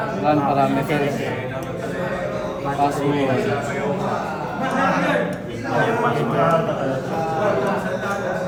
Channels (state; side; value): identical; both; correlation 1.00